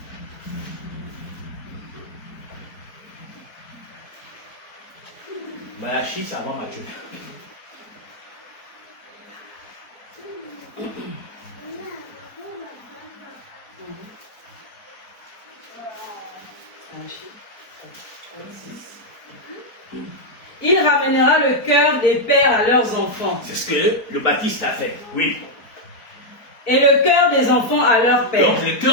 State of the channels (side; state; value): right; late; 4.4 ms